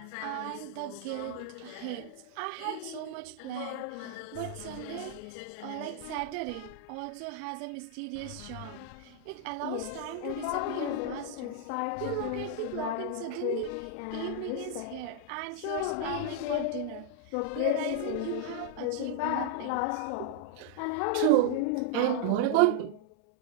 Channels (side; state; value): both; different; correlation 0.00